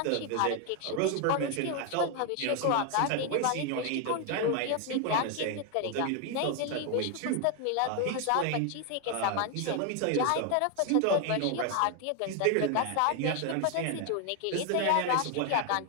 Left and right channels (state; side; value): different; both; correlation 0.01